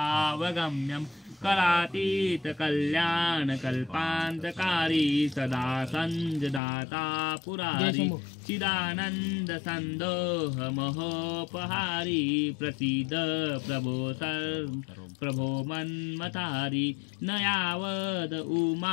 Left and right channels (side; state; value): right; drops out; at 6.6 s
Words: करातीतकल्याणकल्पान्तकारी सदा सञ्जदाता पुरारी चिदानन्दसन्दोहमहोपहारी प्रसीद प्रभो मन्मथारी न यावद